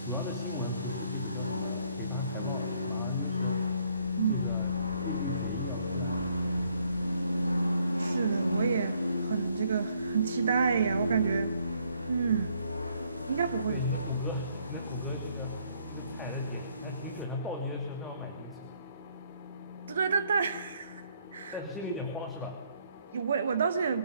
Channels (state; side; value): inverted; both; correlation -0.68